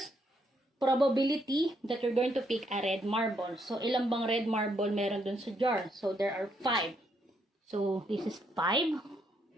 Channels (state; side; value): normal; both; correlation 0.74